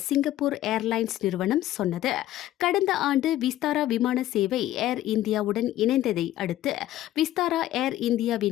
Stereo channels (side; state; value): right; quieter; 13.9 dB